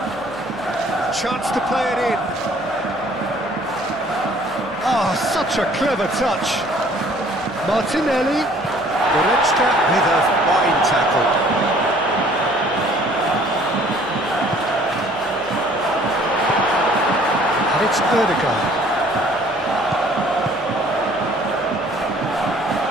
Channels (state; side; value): noise; left; hum, 26 dB below the sound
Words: Chance to play it in. Oh, such a clever touch. Martinelli. Goretzka with a fine tackle. And it's Odegaard.